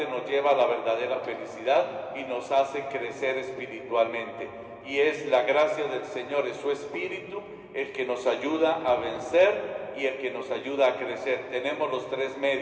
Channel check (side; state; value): both; identical; correlation 1.00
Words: nos lleva a la verdadera felicidad y nos hace crecer espiritualmente. Y es la gracia del Señor, es su Espíritu el que nos ayuda a vencer y el que nos ayuda a crecer. Tenemos los tres